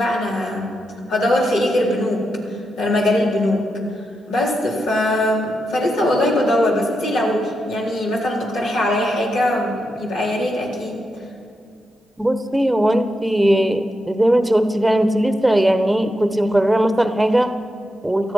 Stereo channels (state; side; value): normal; both; correlation 0.86